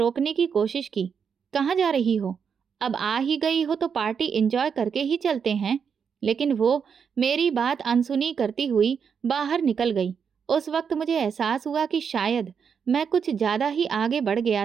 की कोशिश की। कहाँ जा रही हो? अब आ ही गई हो तो पार्टी एंजॉय करके ही चलते हैं। लेकिन वो मेरी बात अनसुनी करती हुई बाहर निकल गई। उस वक्त मुझे एहसास हुआ कि शायद मैं कुछ ज्यादा ही आगे बढ़ गया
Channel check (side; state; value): left; quieter; 6.7 dB